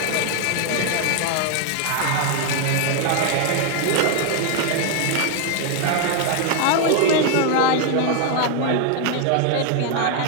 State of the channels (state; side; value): different; both; correlation 0.01